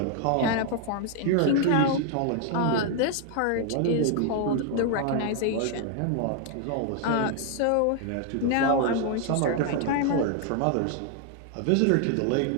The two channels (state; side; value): different; both; correlation 0.00